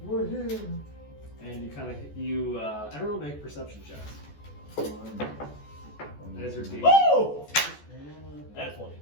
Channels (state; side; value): late; right; 14 ms